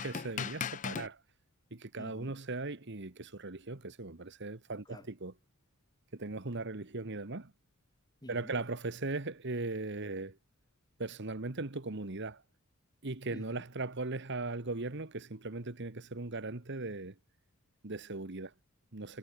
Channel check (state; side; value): normal; both; correlation 0.05